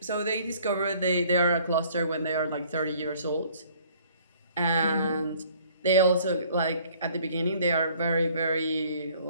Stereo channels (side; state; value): both; inverted; correlation -0.57